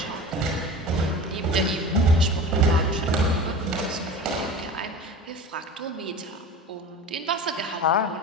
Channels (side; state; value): both; normal; correlation 0.35